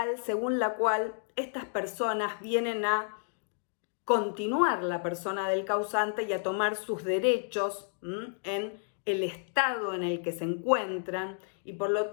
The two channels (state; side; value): silent; right; digital silence